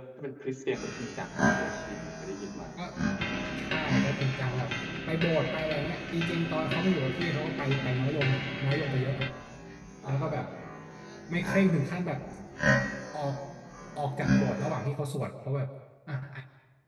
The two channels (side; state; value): both; identical; correlation 1.00